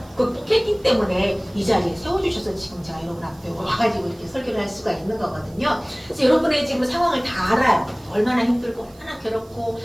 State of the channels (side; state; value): right; noise; hiss, 28 dB below the sound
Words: 극복했기 때문에 이 자리에 세워주셔서 지금 제가 여러분 앞에 와가지고 이렇게 설교를 할 수가 있는 거거든요. 그래서 여러분의 지금 상황을 다 알아요. 얼마나 힘들고 얼마나 괴롭고